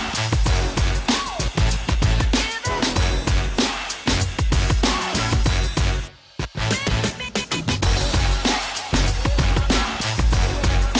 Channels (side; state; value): both; identical; correlation 1.00